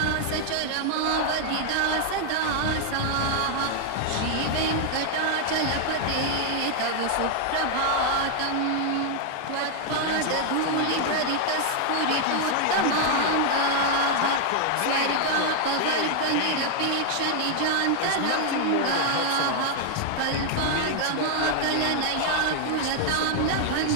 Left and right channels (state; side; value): different; both; correlation 0.00